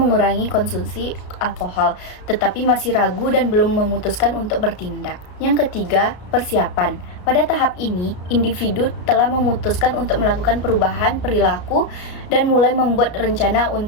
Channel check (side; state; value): right; late; 33 ms